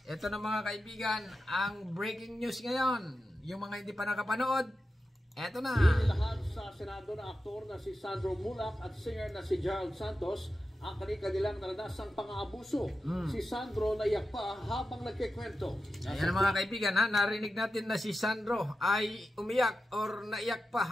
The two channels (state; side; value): normal; both; correlation 0.91